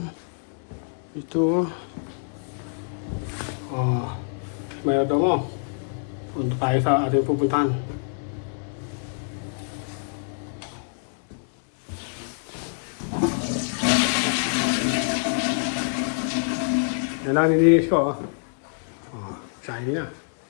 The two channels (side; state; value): right; silent; digital silence